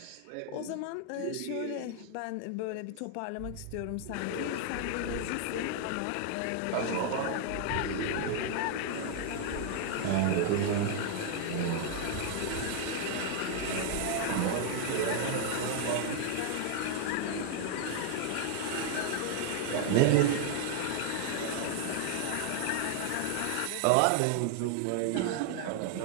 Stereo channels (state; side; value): different; both; correlation 0.00